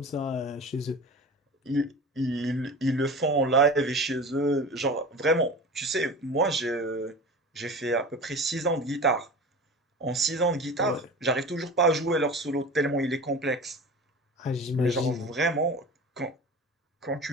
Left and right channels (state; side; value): normal; both; correlation 0.34